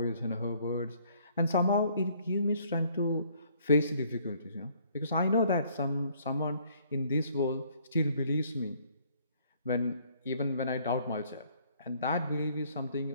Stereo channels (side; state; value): both; inverted; correlation -0.62